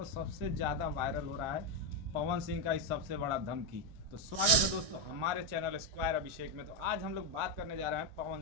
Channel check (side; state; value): left; late; 1.6 ms